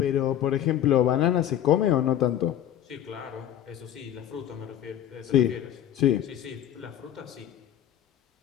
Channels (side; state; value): right; quieter; 10.9 dB